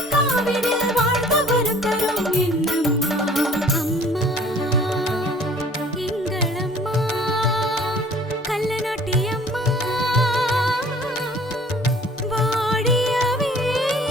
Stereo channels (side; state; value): both; normal; correlation 0.52